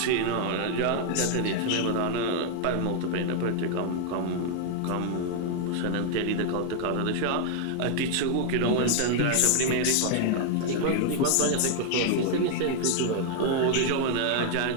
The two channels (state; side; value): different; both; correlation 0.00